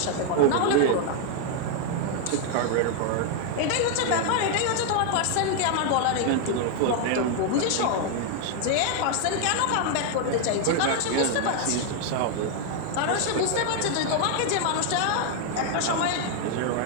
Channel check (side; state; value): both; different; correlation 0.00